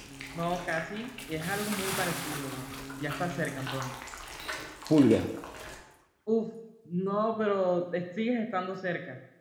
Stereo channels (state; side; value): identical; both; correlation 1.00